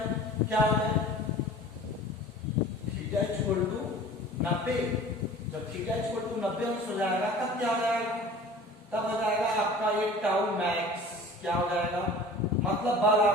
क्या हो जाए, थीटा इक्वल टू 90, जब थीटा इक्वल टू 90 अंश हो जाएगा तब क्या हो जाएगा, तब हो जाएगा आपका ये टाउ मैक्स क्या हो जाएगा, मतलब बल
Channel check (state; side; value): normal; both; correlation 0.43